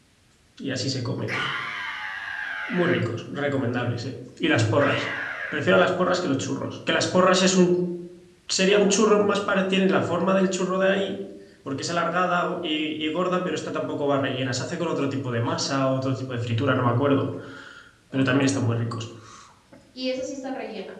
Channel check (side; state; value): both; identical; correlation 1.00